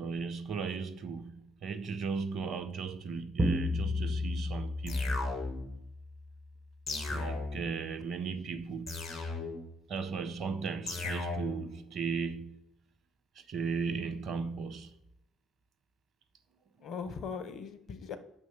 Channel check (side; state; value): both; normal; correlation 0.72